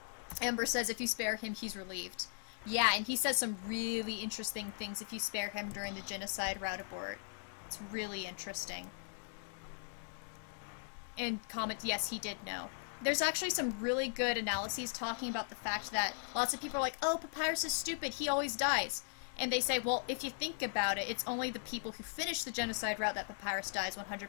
Ember says if you spare him, he's relieved. Yeah, and he says some really interesting things if you spare him during the Genocide Route abort. It's really interesting. And comment, yes, he did know. There's actually some really good analyses talking about the fact that lots of people are like, oh, Papyrus is stupid, he always dies. And they say, well, if you think about it, it's only the people who finish the Genocide Route that Papyrus dies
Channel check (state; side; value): silent; right; digital silence